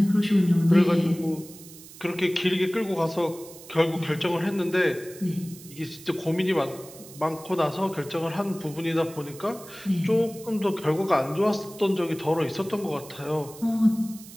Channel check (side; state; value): right; noise; hiss, 18 dB below the sound